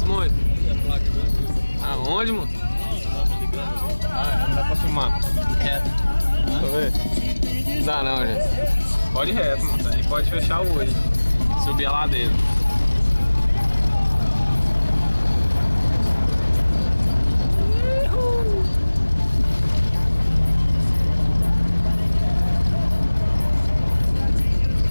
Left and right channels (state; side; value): inverted; both; correlation -1.00